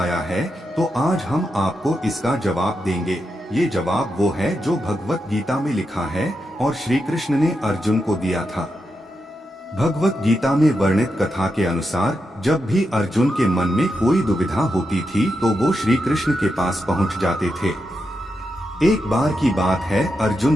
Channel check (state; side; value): normal; both; correlation 0.86